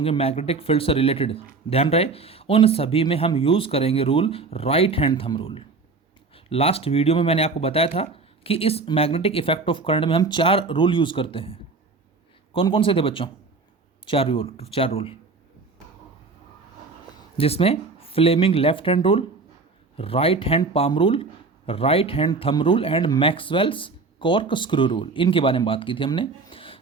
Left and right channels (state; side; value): quieter; left; 4.1 dB